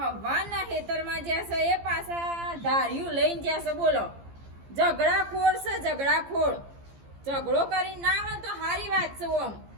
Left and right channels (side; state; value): left; late; 15 ms